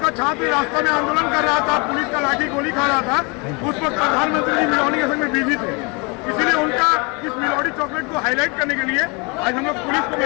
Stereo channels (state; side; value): quieter; right; 30.6 dB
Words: का छात्र रास्ता में आंदोलन कर रहा था, पुलिस का लाठी गोली खा रहा था, उस वक्त प्रधानमंत्री जी मिलोनी के संग में बिजी थे। इसीलिए उनका इस मिलोनी चॉकलेट को हाईलाइट करने के लिए आज हम लोग पुलिस को